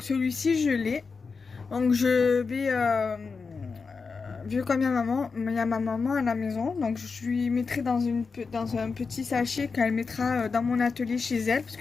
celui-ci je l'ai. Donc je vais, vu comme il y a ma maman à la maison, donc je lui mettrai dans un petit sachet qu'elle mettra dans mon atelier chez elle, parce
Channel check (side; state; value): right; quieter; 4.9 dB